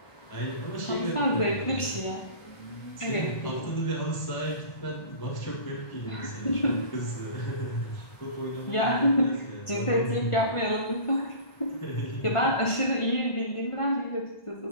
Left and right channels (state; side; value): late; right; 1.5 ms